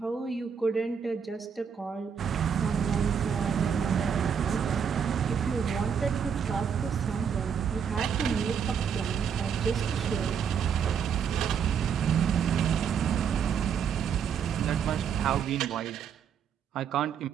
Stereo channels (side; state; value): left; quieter; 7.3 dB